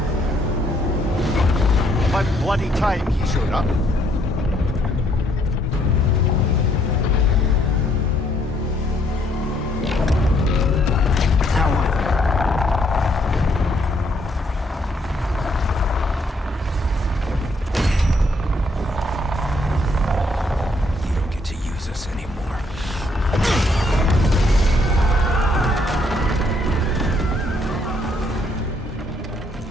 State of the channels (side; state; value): both; normal; correlation 0.69